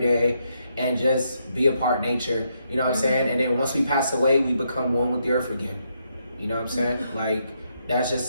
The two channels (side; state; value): both; inverted; correlation -0.78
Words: and just be a part of nature. You know what I'm saying? And then once we pass away, we become one with the earth again. You know what I'm saying? Like that's